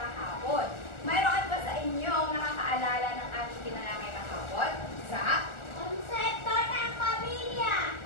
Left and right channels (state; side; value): late; right; 1.4 ms